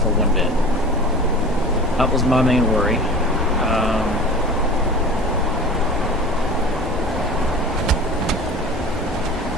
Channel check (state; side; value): normal; both; correlation 0.37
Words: for one bed. That was my main worry.